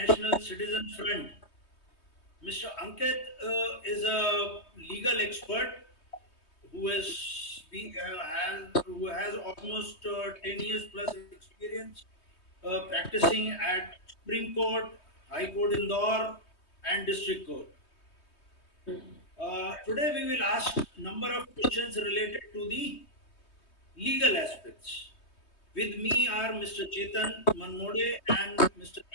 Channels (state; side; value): late; right; 3.2 ms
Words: Citizen Front. Mr. Ankit is a legal expert who has almost 10 years plus experience practicing at Supreme Court, High Court Indore, and District Court. Today we will ask number of questions related to the legal aspects. With me are Mr. Chetan Manmode and Mr.